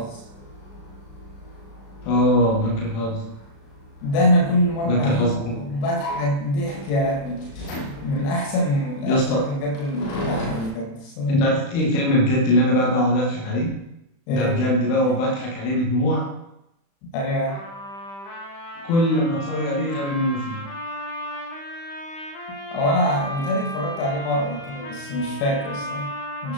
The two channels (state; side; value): late; right; 36 ms